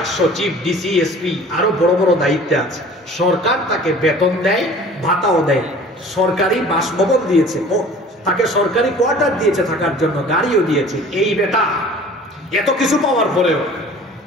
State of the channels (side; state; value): both; normal; correlation 0.46